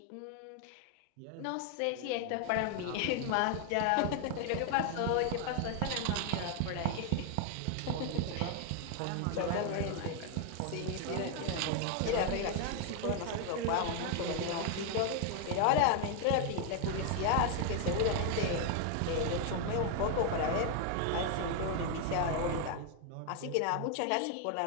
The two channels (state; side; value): different; both; correlation 0.00